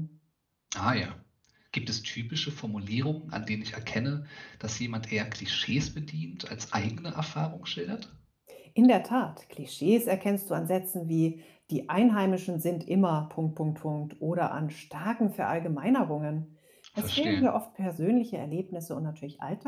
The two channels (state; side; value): identical; both; correlation 1.00